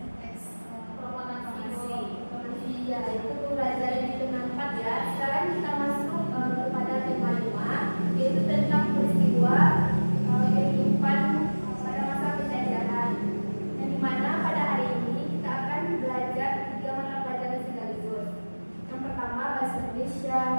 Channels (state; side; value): inverted; both; correlation -1.00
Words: Ya, itu pembelajaran di tema 4 ya. Sekarang kita masuk kepada tema 5, yaitu tentang peristiwa kehidupan pada masa penjajahan. Yang dimana pada hari ini kita akan belajar 3 mata pelajaran sekaligus. Yang pertama bahasa Indonesia,